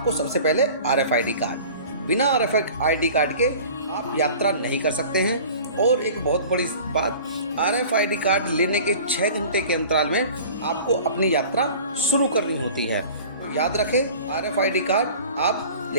सबसे पहले RFID कार्ड, बिना RFID कार्ड के आप यात्रा नहीं कर सकते हैं। और एक बहुत बड़ी बात, RFID कार्ड लेने के 6 घंटे के अंतराल में आपको अपनी यात्रा शुरू करनी होती है। तो याद रखें, RFID कार्ड आप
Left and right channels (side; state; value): both; inverted; correlation -0.42